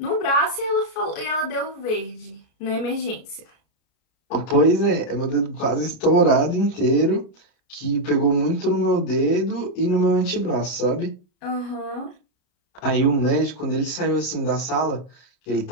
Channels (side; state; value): right; late; 33 ms